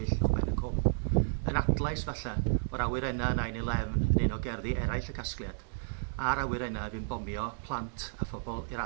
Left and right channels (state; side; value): silent; left; digital silence